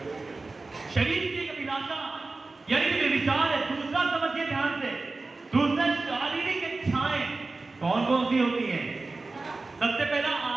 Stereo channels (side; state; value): left; quieter; 3.5 dB